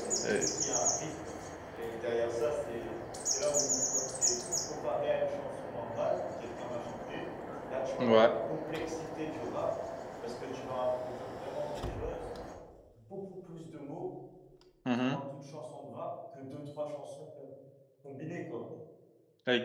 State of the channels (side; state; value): both; identical; correlation 1.00